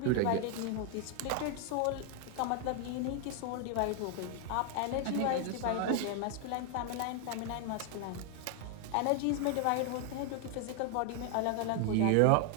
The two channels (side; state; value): both; different; correlation 0.00